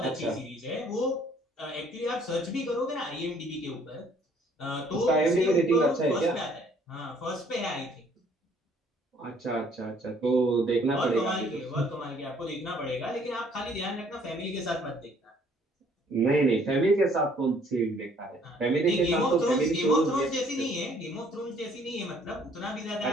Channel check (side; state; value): both; normal; correlation 0.61